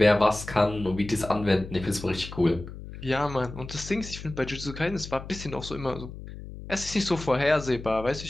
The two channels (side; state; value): left; noise; hum, 12 dB below the sound